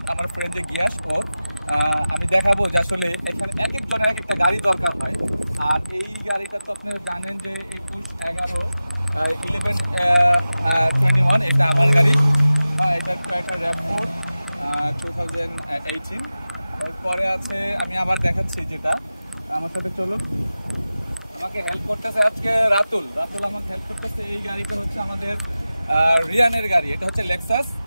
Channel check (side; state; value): both; inverted; correlation -0.95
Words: আমার ফ্রেন্ড যে গিয়াস ওর। আমি দেখাবো যে আসলে এখানে এক একজনের এক একটা গাড়ি দরকার হয়। আর এই গাড়িটা তো আপনারা জানেন যে 1121 এটা আমার গাড়ি। এটা একটা র্যাপ4 2018। এরপরে আছে, আমি আবার দেখাচ্ছি যেটা, আমার সাথে চলুন। আমাকে হেল্প করতেছে আজকে রাতুল আমাকে হেল্প করতেছে। এই গাড়িটা হচ্ছে আমাদের রিয়ানের গাড়ি। এটা হচ্ছে লেক্সাস,